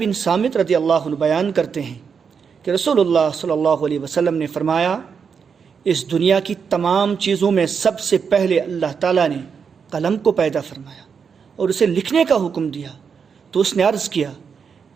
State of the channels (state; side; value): quieter; left; 6.3 dB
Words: صامت رضی اللہ عنہ بیان کرتے ہیں کہ رسول اللہ صلی اللہ علیہ وسلم نے فرمایا، اس دنیا کی تمام چیزوں میں سب سے پہلے اللہ تعالیٰ نے قلم کو پیدا فرمایا اور اسے لکھنے کا حکم دیا، تو اس نے عرض کیا،